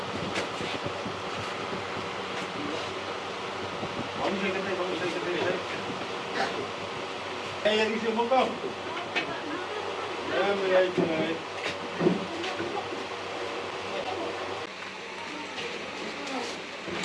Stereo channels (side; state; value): both; identical; correlation 1.00